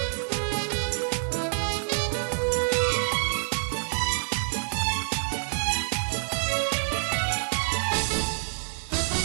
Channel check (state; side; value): silent; left; digital silence